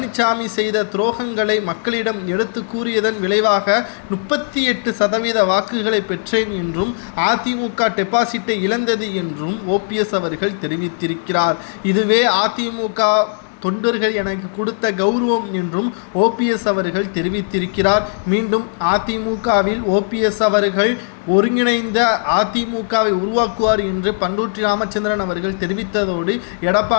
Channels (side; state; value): right; silent; digital silence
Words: செய்த துரோகங்களை மக்களிடம் எடுத்து கூறியதன் விளைவாக 38% வாக்குகளை பெற்றேன் என்றும், அதிமுக டெபாசிட்டை இழந்தது என்றும் ஓபிஎஸ் அவர்கள் தெரிவித்திருக்கிறார். இதுவே அதிமுக தொண்டர்கள் எனக்கு கொடுத்த கௌரவம் என்றும் ஓபிஎஸ் அவர்கள் தெரிவித்திருக்கிறார். மீண்டும் அதிமுகவில் ஓபிஎஸ் அவர்கள் ஒருங்கிணைந்த அதிமுகவை உருவாக்குவார் என்று பண்ருட்டி ராமச்சந்திரன் அவர்கள் தெரிவித்ததோடு